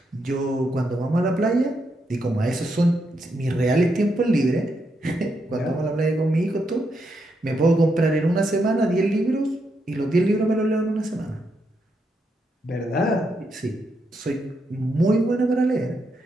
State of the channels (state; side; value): normal; both; correlation 0.81